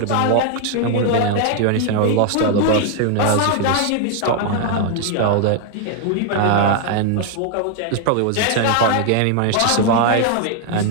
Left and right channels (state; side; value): different; both; correlation 0.00